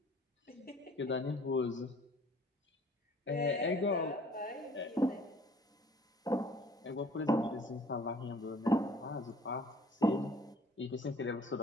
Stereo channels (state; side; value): normal; both; correlation 0.54